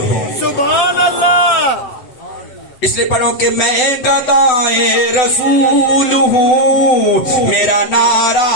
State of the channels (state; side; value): late; right; 7.9 ms